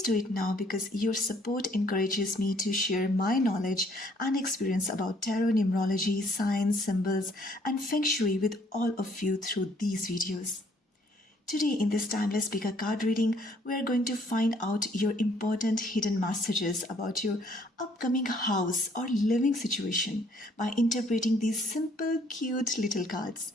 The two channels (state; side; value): normal; both; correlation 0.63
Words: do it now because your support encourages me to share my knowledge and experience about tarot, numerology, signs, symbols, and feng shui with all of you through these videos. Today, in this timeless speaker card reading, we are going to find out your important hidden messages about your upcoming house or living situation by interpreting these simple, cute little cards.